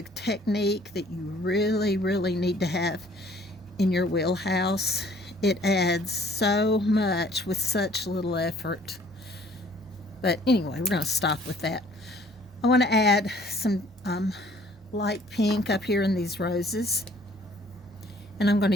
technique that you really, really need to have in your wheelhouse. It adds so much with such little effort. But anyway, we're going to stop with that. I want to add some light pink up here in these roses. And I'm going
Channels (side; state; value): both; normal; correlation 0.57